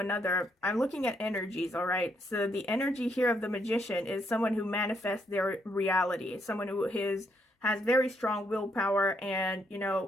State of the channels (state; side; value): normal; both; correlation 0.74